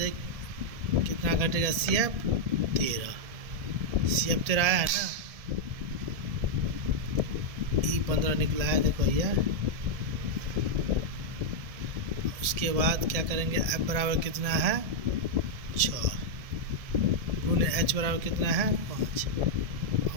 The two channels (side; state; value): left; late; 1.7 ms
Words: कितना घटेगा सी एफ 13, सी एफ 13 आया है ना, ई 15 निकला है देखो भैया। उसके बाद क्या करेंगे, एफ बराबर कितना है 6 गुने एच बराबर कितना है 5।